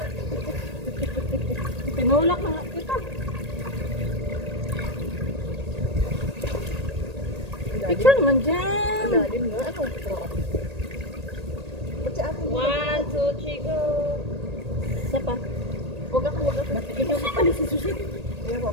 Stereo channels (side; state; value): left; late; 1.8 ms